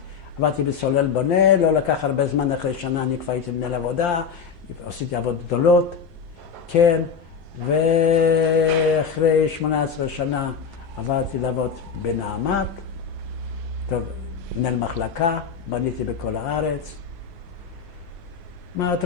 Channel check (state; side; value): quieter; right; 6.1 dB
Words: עבדתי בסולל בונה, לא לקח הרבה זמן, אחרי שנה אני כבר הייתי מנהל עבודה, עשיתי עבודות גדולות, כן, ואחרי 18 שנה עברתי לעבוד בנעמת, טוב, מנהל מחלקה, בניתי בכל הארץ. מה את